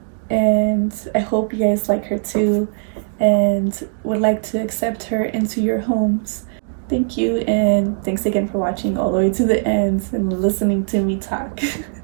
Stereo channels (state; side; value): silent; left; digital silence